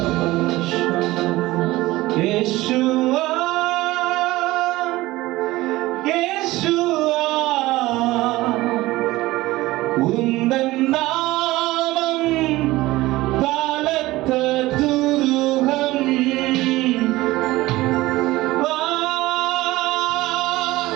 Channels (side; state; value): left; quieter; 18.4 dB